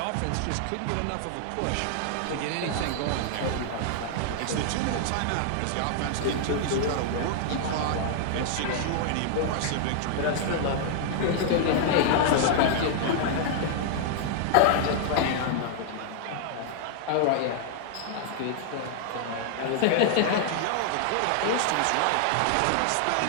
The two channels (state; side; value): different; both; correlation -0.01